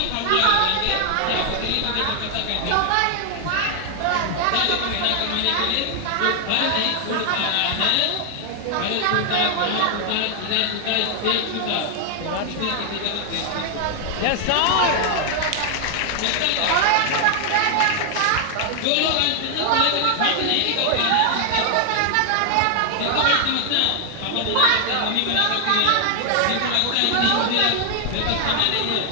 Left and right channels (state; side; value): different; both; correlation 0.00